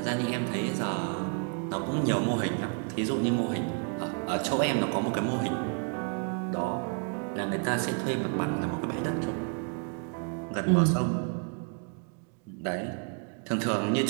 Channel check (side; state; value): left; quieter; 39.4 dB